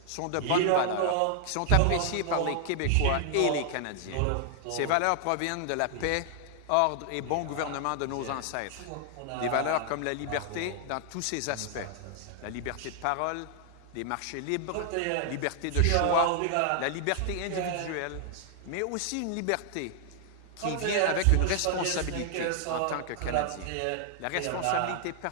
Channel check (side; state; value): both; different; correlation 0.00